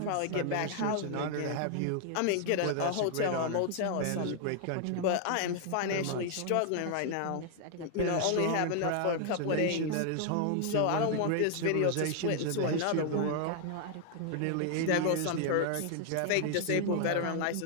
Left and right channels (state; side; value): different; both; correlation 0.00